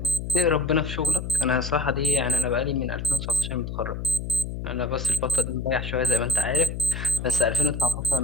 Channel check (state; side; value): noise; left; hum, 6 dB below the sound